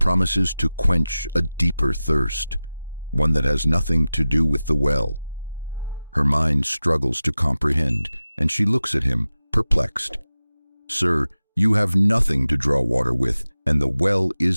to quench a deeper thirst, one that has nothing to do with the well. Her mind struggles to comprehend, and she looks at him, perplexed. "Sir, you have nothing to draw water with, and the well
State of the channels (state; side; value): inverted; both; correlation -0.95